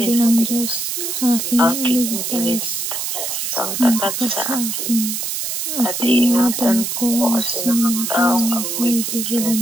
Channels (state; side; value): noise; right; hiss, 3 dB below the sound